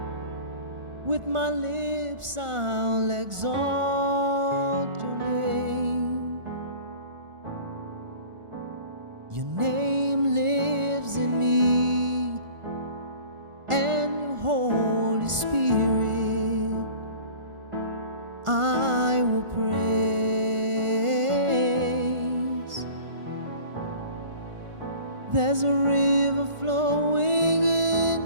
With my lips I'll exalt your name. Your name lives in me, and your Holy Spirit I will praise. There's a river flowing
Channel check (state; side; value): late; left; 1.4 ms